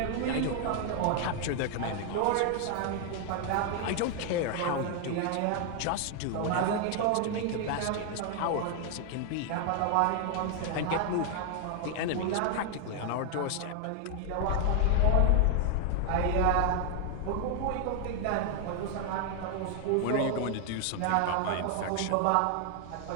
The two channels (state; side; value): different; both; correlation 0.00